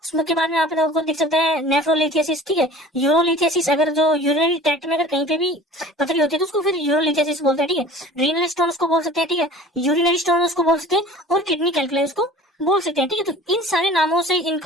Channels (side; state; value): both; normal; correlation 0.43